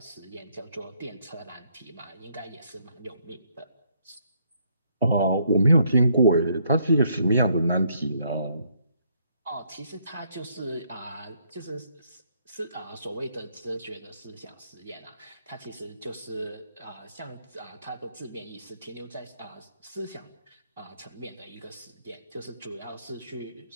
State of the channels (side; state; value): both; inverted; correlation -0.70